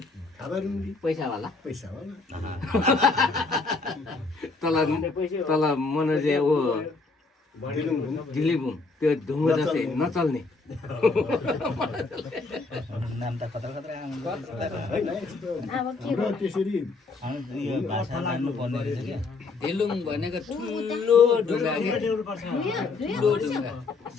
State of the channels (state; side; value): quieter; right; 4.0 dB